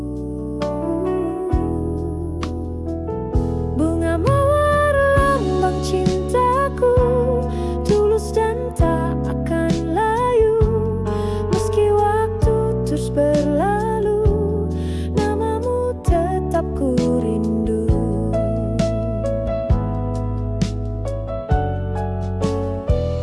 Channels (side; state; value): both; identical; correlation 1.00